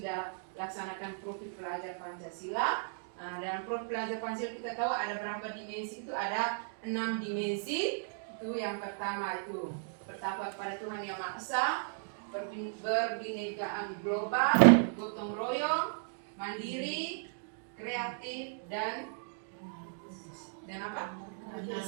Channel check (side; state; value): left; silent; digital silence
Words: laksanakan profil pelajar Pancasila. Dalam profil pelajar Pancasila kita tahu ada berapa dimensi, itu ada 6 dimensi. Itu yang pertama, itu bertakwa kepada Tuhan Yang Maha Esa, berbinekaan global, gotong royong, mandiri, kreatif, dan apa?